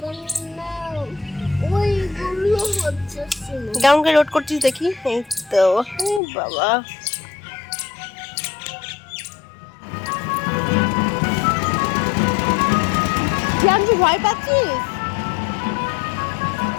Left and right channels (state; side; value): drops out; right; at 6.2 s